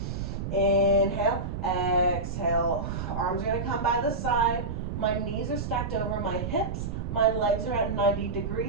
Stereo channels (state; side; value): noise; right; rumble, 4 dB below the sound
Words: Inhale, exhale. Arms are going to come by the side. My knees are stacked over my hips. My legs are at 90